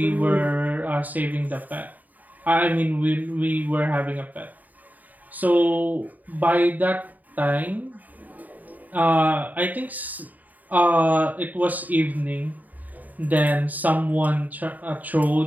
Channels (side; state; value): left; late; 0.080 ms